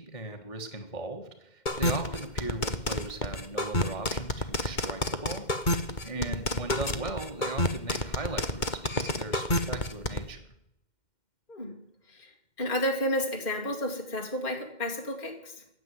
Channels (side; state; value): right; late; 2.1 ms